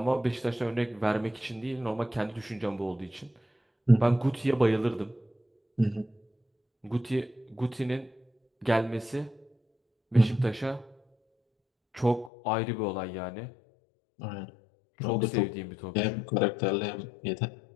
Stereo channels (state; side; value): drops out; right; at 12.3 s